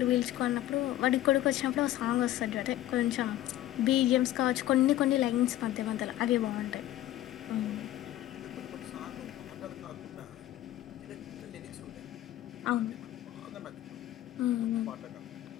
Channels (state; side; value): quieter; right; 14.1 dB